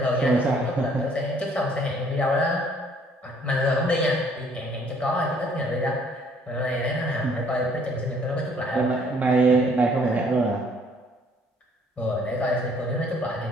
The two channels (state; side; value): normal; both; correlation 0.61